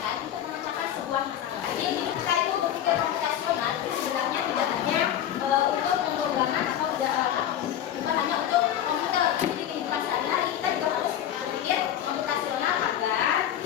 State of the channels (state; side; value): quieter; right; 10.7 dB